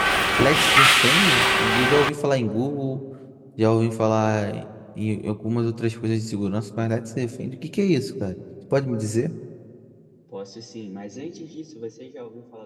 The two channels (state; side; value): identical; both; correlation 1.00